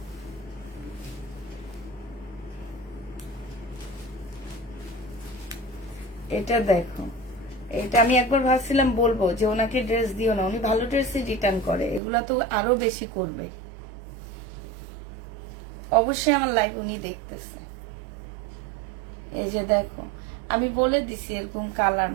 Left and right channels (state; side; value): drops out; left; at 12.0 s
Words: এটা দেখো, এটা আমি একবার ভাবছিলাম বলবো যে ওনাকে ড্রেস দিও না, উনি ভালো ড্রেসই রিটার্ন করে, এগুলা তো আরো বেশি করবে। অবশ্যই আমার লাইভ উনি দেখতেছে। এই যে দেখো, আমি বলে দিছি এরকম কালার,